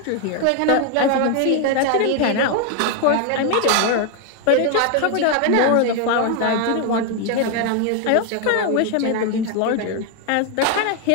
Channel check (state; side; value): different; both; correlation 0.01